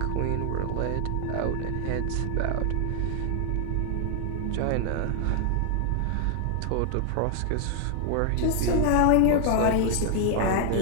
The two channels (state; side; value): different; both; correlation 0.00